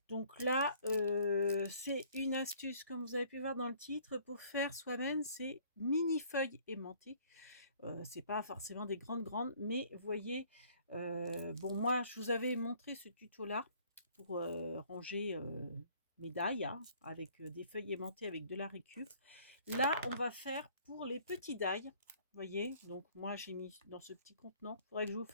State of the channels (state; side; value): inverted; both; correlation -0.57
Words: Donc là, c'est une astuce comme vous avez pu voir dans le titre pour faire soi-même ces mini feuilles aimantées. C'est pas forcément des grandes, mais vous voyez, bon moi je vous avais montré ce tuto là pour, ranger, mes dailles, hein, avec, des feuilles aimantées avec de la récup. Là, on va faire pour les petits dailles, vous voyez? Donc moi j'ai mis dans ce petit contenant. Il faudrait que je vous